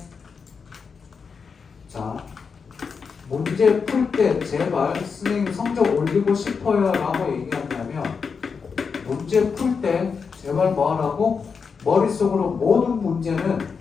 자, 문제 풀 때 제발 선생님 성적 올리고 싶어요 라고 얘기한다면 문제 풀 때 제발 뭐 하라고? 머릿속으로 모든 문제는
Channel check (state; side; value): quieter; right; 5.6 dB